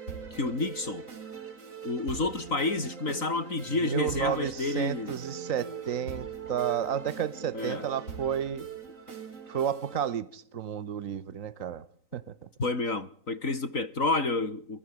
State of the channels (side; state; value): right; late; 3.9 ms